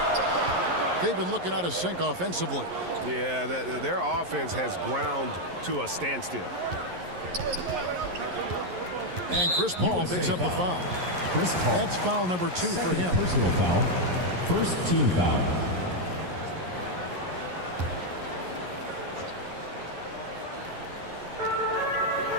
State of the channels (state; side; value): late; left; 11 ms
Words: They've been looking out of sync offensively. Yeah, their offense has ground to a standstill. And Chris Paul picks up the foul. Chris Paul. That's foul number 2 for him. Personal foul. First team foul.